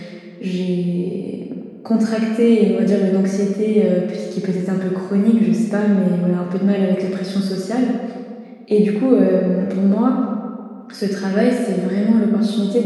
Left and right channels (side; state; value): both; identical; correlation 1.00